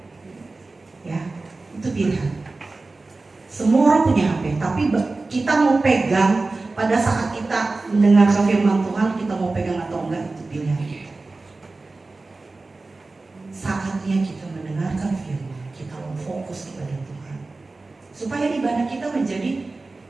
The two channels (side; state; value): left; quieter; 3.4 dB